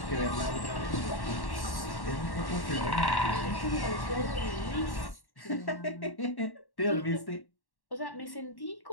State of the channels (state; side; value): late; right; 1.1 ms